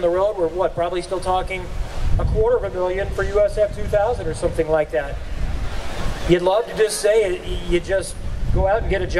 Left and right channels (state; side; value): identical; both; correlation 1.00